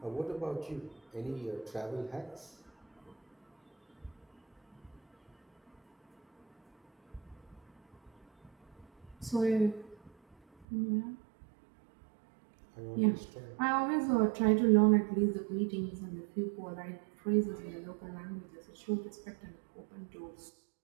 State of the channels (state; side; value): drops out; left; at 10.7 s